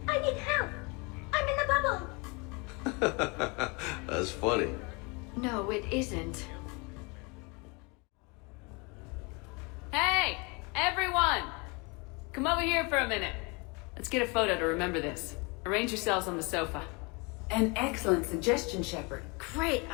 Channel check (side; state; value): right; quieter; 29.9 dB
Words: I need help. I'm in a bubble. That's funny. No, it isn't. Hey, everyone! Come over here for a minute. Let's get a photo to remember this. Arrange yourselves on the sofa. An excellent suggestion, Shepard. Great